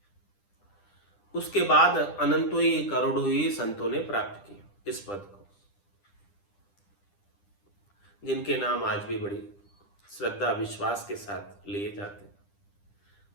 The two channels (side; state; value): right; late; 10 ms